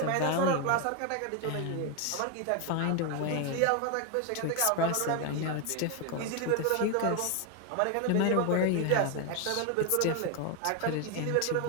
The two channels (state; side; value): different; both; correlation 0.01